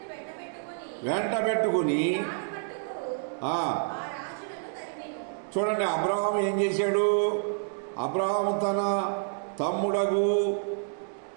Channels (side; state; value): left; silent; digital silence